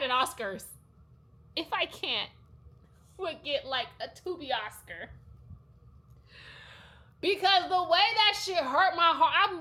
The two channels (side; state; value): both; identical; correlation 1.00